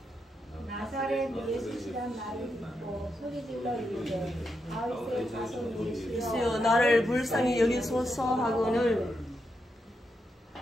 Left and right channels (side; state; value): both; normal; correlation 0.84